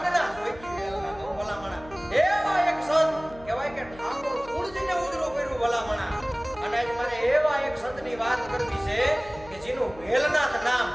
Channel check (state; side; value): noise; left; hum, 19 dB below the sound